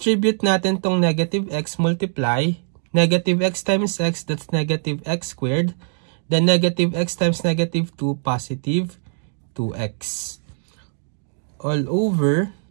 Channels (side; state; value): left; silent; digital silence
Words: natin tong negative x, multiply. Negative x times x, that's negative x squared. Then negative x times negative 2, positive 2x. All over.